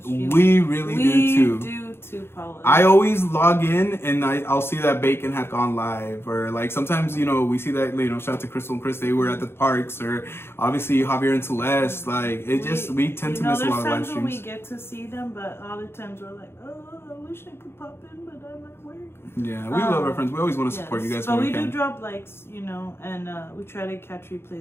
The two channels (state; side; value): late; right; 0.12 ms